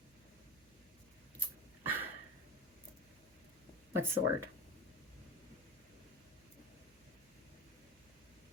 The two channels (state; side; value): noise; right; hum, 26 dB below the sound